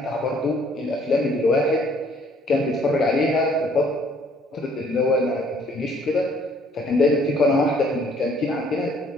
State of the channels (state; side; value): normal; both; correlation 0.61